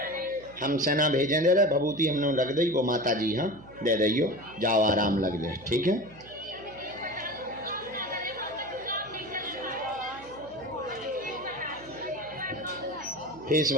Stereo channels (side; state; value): right; noise; hum, 20 dB below the sound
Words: हम सेना भेजें दे रहे, भभूति हमने रख दी, वो माता जी हाँ दे दियो, जाओ आराम लग जाए, ठीक है। फेस